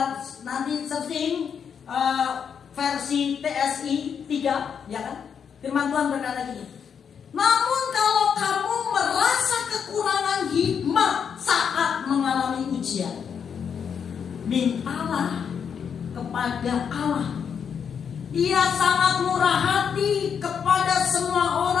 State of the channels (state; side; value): quieter; right; 7.2 dB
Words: nanti searching versi TSI 3, ya kan? Firman Tuhan berkata gini. Namun kalau kamu merasa kekurangan hikmat saat mengalami ujian, mintalah kepada Allah. Ia sangat murah hati kepada semua